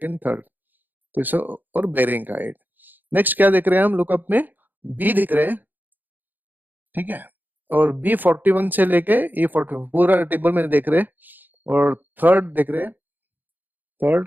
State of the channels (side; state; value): left; late; 0.087 ms